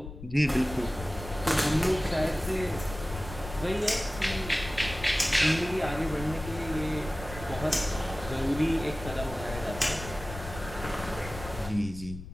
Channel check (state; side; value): noise; left; rumble, 11 dB below the sound